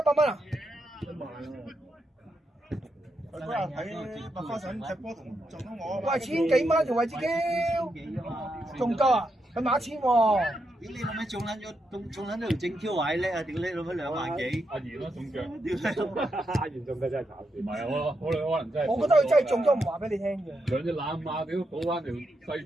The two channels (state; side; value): normal; both; correlation 0.83